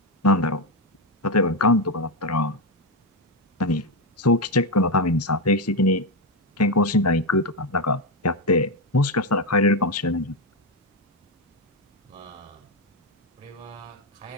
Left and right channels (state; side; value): normal; both; correlation 0.07